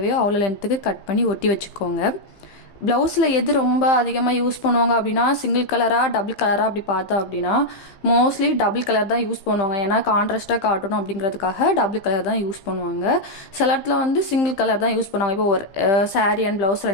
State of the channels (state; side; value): late; right; 15 ms